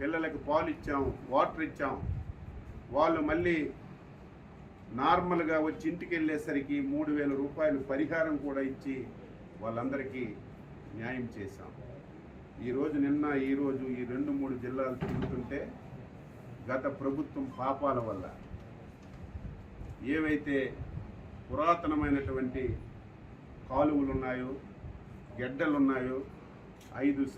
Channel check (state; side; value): identical; both; correlation 1.00